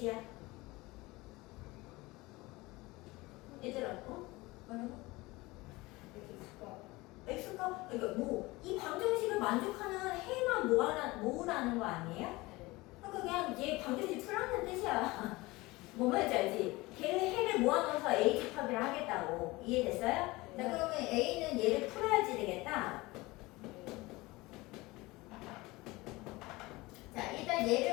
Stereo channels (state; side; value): quieter; right; 21.5 dB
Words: 얘들아, 뭐라고? X가, 그러니까 뭐, 이 방정식을 만족하는 해만 모으라는 거 아니에요? 그러니까 그냥 얘 방정식 풀라는 뜻이야. 뭔 말인지 알지? 걔의 해를 모아놓아서 A 집합이라 하겠다고. 이해됐어요? 자, 그러면 A는 얘를 풀어야지 되겠다. 자, 일단